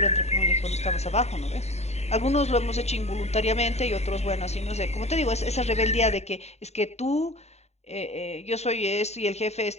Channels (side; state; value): right; late; 0.32 ms